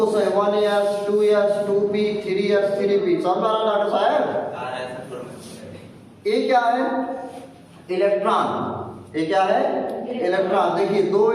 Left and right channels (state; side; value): identical; both; correlation 1.00